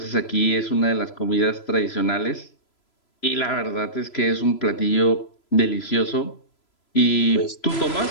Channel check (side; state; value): right; late; 3.0 ms